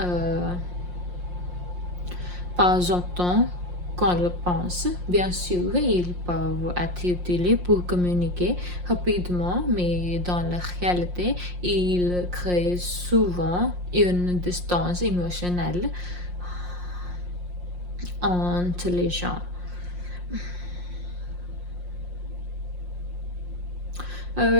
pas autant qu'on le pense. Bien sûr, ils peuvent être utilisés pour communiquer rapidement, mais dans la réalité, ils créent souvent une distance émotionnelle entre les gens.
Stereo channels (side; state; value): left; late; 5.6 ms